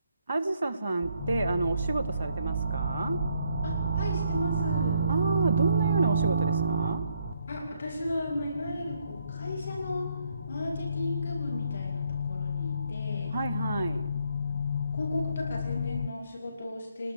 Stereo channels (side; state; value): both; inverted; correlation -0.72